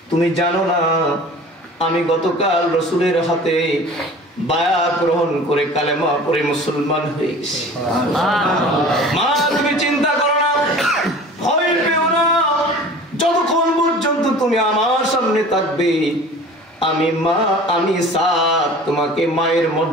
তুমি জানো না আমি গতকাল রাসূলের হাতে বায়াত গ্রহণ করে কালেমা পড়ে মুসলমান হয়ে গেছি। মা তুমি চিন্তা করো না, ভয় পেও না, যতক্ষণ পর্যন্ত তুমি আমার সামনে থাকবে, আমি মা, আমি সাদ তোমাকে মায়ের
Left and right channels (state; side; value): normal; both; correlation 0.42